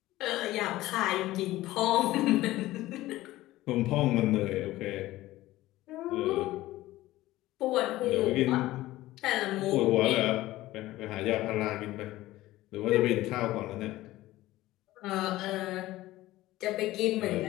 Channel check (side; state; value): right; quieter; 16.7 dB